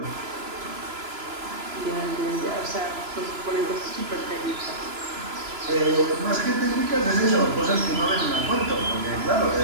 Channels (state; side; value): late; left; 3.0 ms